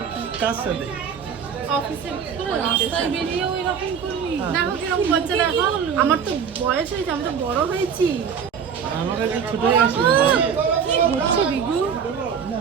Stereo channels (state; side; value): quieter; left; 7.0 dB